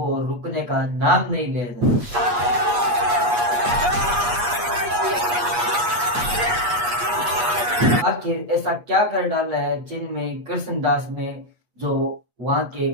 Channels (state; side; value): late; left; 8.3 ms